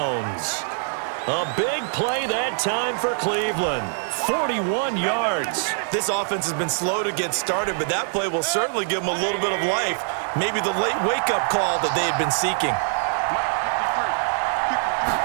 A big play that time for Cleveland. 41 yards. This offense has been slow to get started, but that play will certainly give them a little bit of life. Maybe the late wake-up call that they had been seeking.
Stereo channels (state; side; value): silent; left; 63 dB below the other